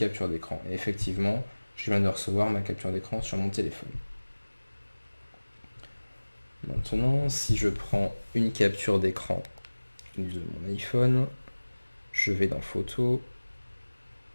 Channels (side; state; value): both; inverted; correlation -1.00